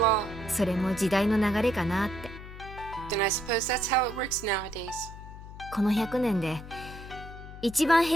それも時代の流れかなって。then I suppose that's how it works nowadays. この100年で一番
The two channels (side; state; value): left; noise; hum, 14 dB below the sound